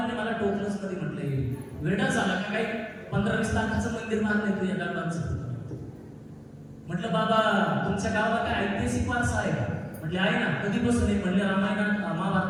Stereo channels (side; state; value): both; identical; correlation 1.00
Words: मला टोकलंच कधी म्हटलंय, वेडा झाला का काही 15-20 लाखाचं मंदिर बांधलंय तू या दगडांचं. म्हटलं बाबा तुमच्या गावाला काय ऐतिहासिक वारसा आहे का? म्हटले आहे ना. कधीपासून आहे? म्हणले रामायणात